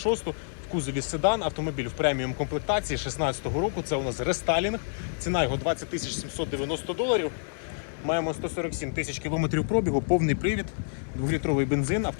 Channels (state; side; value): silent; right; 55 dB below the other